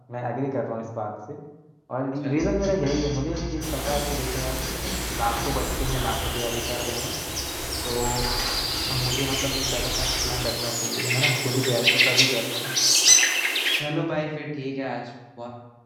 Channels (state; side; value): identical; both; correlation 1.00